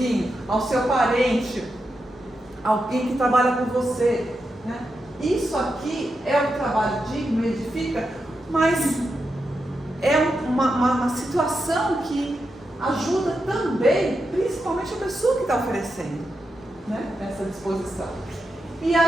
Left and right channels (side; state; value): both; normal; correlation 0.87